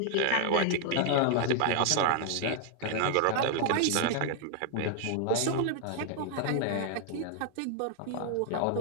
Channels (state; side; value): different; both; correlation 0.00